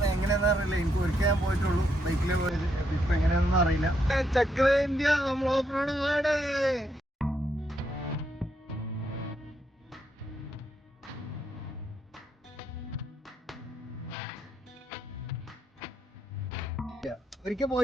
എങ്ങനെയാണെന്ന് അറിയില്ല. എനിക്ക് ഒരിക്കൽ ഞാൻ പോയിട്ടുള്ളൂ ബൈക്കിലേ പോയത്. ഇപ്പൊ എങ്ങനെയാണെന്ന് അറിയില്ല. ചക്ര ഇന്ത്യ നമ്മൾ ഓഫ് റോഡ് പോവാണ്. ഒരിക്കൽ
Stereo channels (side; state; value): both; normal; correlation 0.77